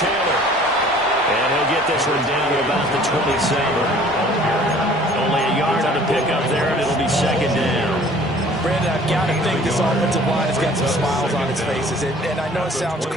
And he'll get this one down to about the 27. Only a yard on the pickup there, and it'll be 2nd down. Brandon, I've got to think this offensive line has got some smiles on its faces. And I know it sounds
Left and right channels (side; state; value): both; normal; correlation 0.51